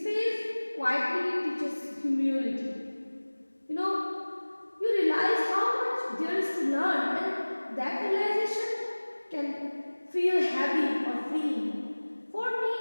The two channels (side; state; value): both; inverted; correlation -1.00